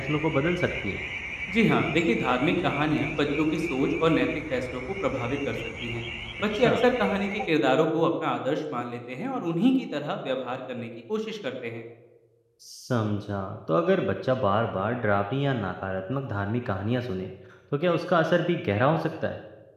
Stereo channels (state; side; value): identical; both; correlation 1.00